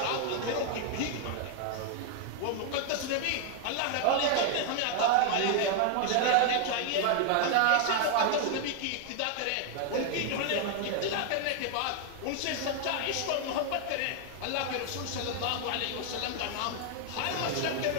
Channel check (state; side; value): different; both; correlation 0.00